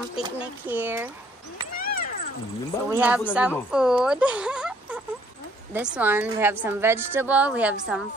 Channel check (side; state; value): both; normal; correlation 0.63